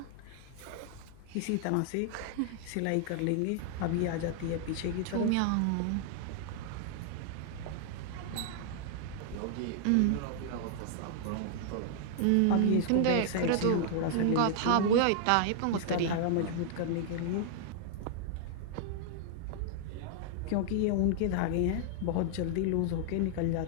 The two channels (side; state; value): both; different; correlation -0.01